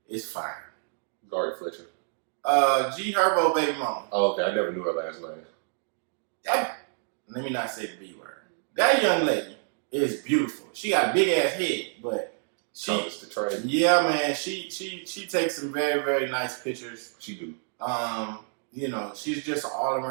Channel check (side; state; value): left; silent; digital silence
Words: is fine. Ari Fletcher. G Herbo baby mama. Oh, okay. I never knew her last name. Let me not say the B word. That young lady is beautiful. She got a big ass head, but yeah, man, she takes some very, very nice pictures. She do. You know, she's just an all